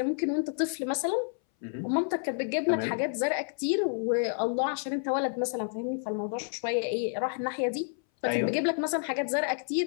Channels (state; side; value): silent; right; 58 dB below the other